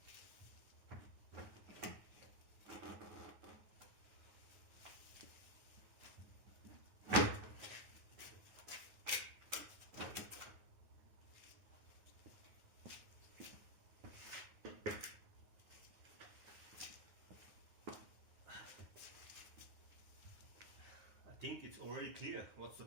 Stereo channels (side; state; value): left; late; 9.6 ms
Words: I think it's already clear what's the